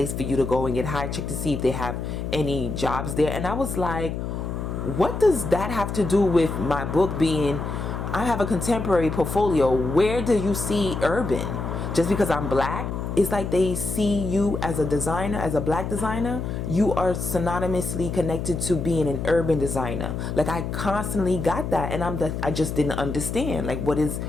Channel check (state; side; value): noise; left; hum, 4 dB below the sound